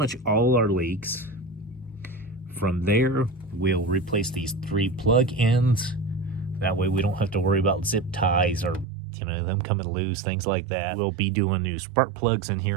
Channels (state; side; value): drops out; left; at 8.8 s